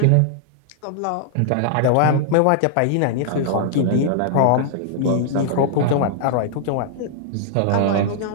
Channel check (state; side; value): different; both; correlation -0.01